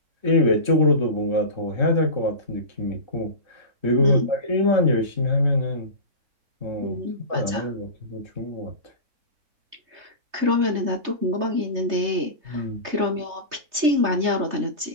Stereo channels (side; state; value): left; late; 3.3 ms